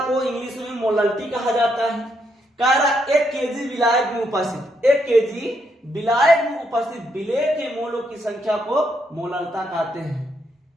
को इंग्लिश में मोलरिटी कहा जाता है। कह रहा 1 केजी विलायक में उपस्थित, 1 केजी विलायक में उपस्थित विलेय के मोलों की संख्या को मोलरता कहते हैं।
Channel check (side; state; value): both; normal; correlation 0.77